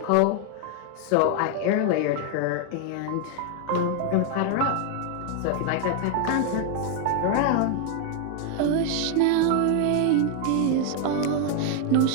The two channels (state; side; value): different; both; correlation 0.00